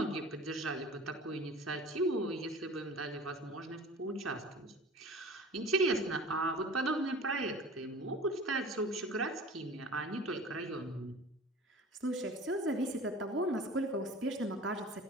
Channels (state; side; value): normal; both; correlation 0.40